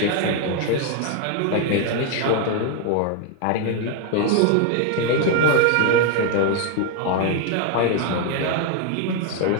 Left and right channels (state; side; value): different; both; correlation 0.01